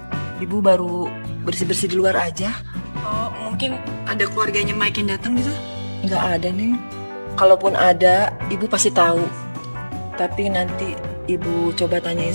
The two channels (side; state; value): both; inverted; correlation -1.00